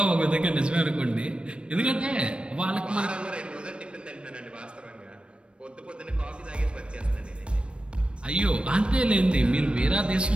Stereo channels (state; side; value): late; left; 0.057 ms